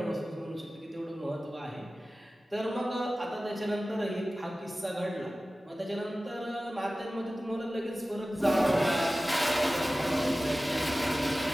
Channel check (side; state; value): both; normal; correlation 0.96